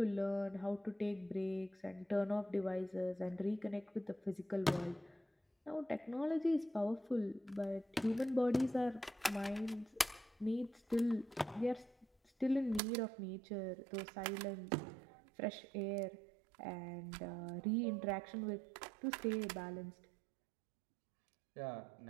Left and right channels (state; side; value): drops out; left; at 12.8 s